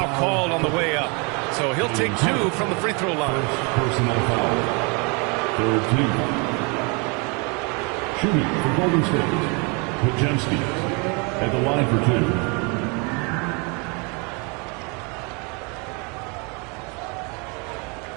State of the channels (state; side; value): quieter; left; 31.9 dB